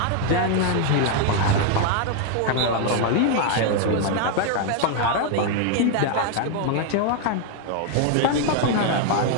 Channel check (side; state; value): both; different; correlation 0.00